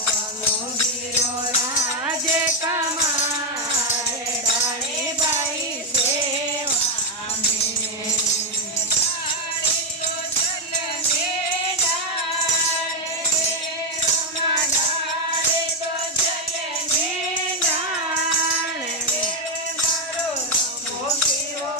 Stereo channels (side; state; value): both; normal; correlation 0.04